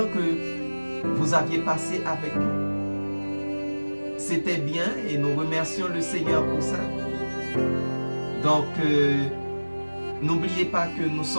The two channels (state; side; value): inverted; both; correlation -1.00